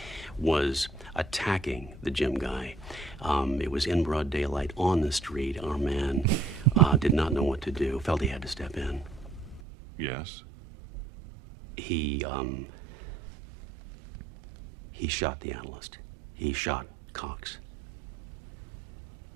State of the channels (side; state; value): left; drops out; at 9.6 s